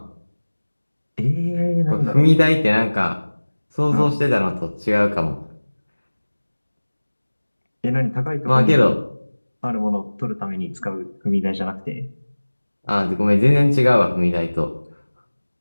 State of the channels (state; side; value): inverted; both; correlation -1.00